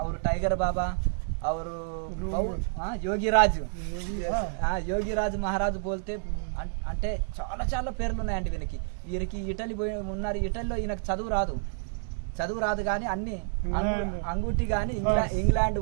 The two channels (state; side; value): silent; left; digital silence